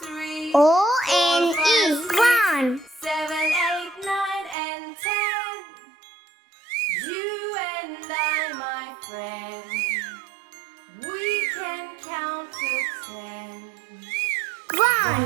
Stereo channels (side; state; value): left; drops out; at 4.5 s